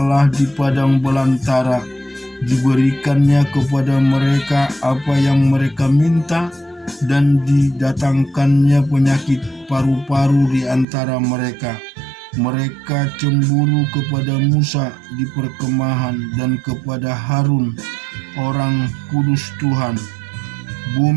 di padang belantara. Diberikannya kepada mereka apa yang mereka minta, dan didatangkannya penyakit paru-paru di antara mereka. Mereka cemburu kepada Musa di perkemahan dan kepada Harun, orang kudus Tuhan.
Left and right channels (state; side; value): drops out; left; at 10.9 s